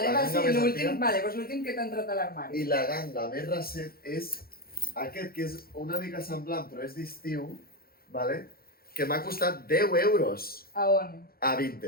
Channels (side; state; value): right; late; 0.44 ms